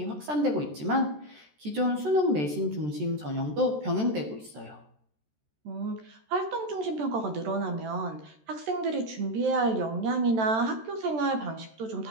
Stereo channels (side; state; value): left; late; 13 ms